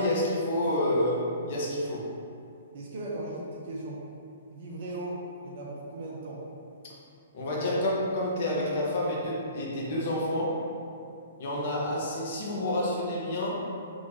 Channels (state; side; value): inverted; both; correlation -0.46